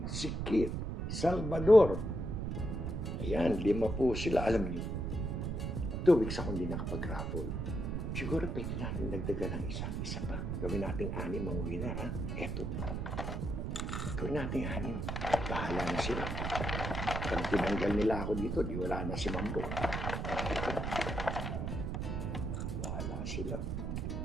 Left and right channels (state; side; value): noise; right; rumble, 2 dB below the sound